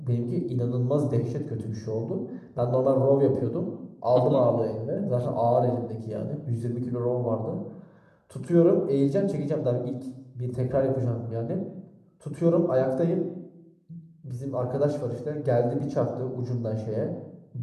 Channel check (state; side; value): identical; both; correlation 1.00